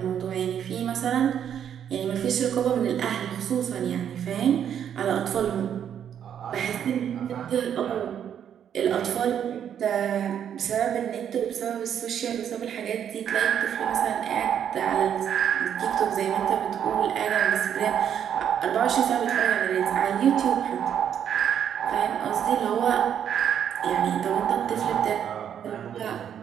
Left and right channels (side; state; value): left; quieter; 9.0 dB